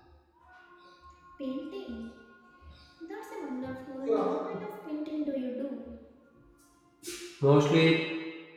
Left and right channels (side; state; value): both; identical; correlation 1.00